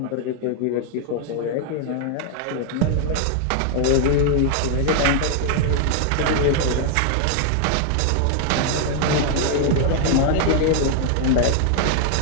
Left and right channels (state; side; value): different; both; correlation 0.00